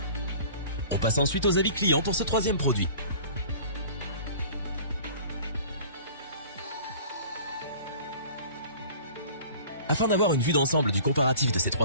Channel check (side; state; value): both; inverted; correlation -0.45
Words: On passe ensuite aux avis clients pour ce troisième produit. Afin d'avoir une vue d'ensemble du comparatif de ces 3